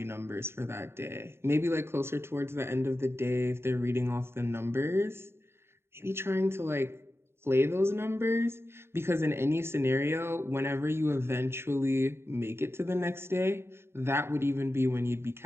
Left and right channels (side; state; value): left; late; 0.12 ms